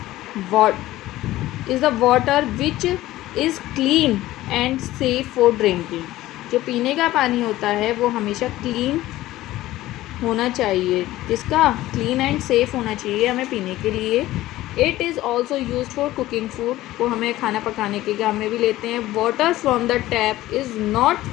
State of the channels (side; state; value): right; quieter; 16.0 dB